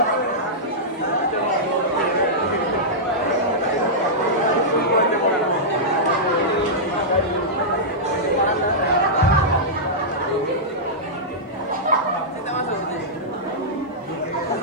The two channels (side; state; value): both; normal; correlation -0.12